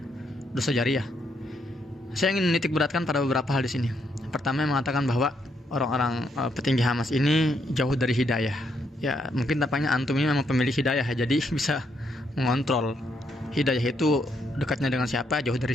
dosa jariah. Saya ingin menitik beratkan pada beberapa hal di sini. Pertama, yang mengatakan bahwa orang-orang petinggi Hamas ini jauh dari hidayah. Ya, mungkin tampaknya antum ini memang pemilik hidayah, jadi bisa mengontrol hidayah itu dekatnya dengan siapa, jauh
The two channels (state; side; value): normal; both; correlation 0.76